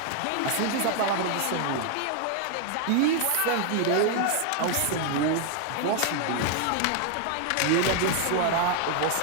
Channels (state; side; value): different; both; correlation 0.00